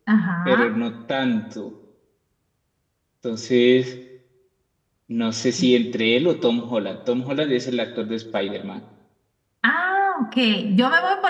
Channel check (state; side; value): identical; both; correlation 1.00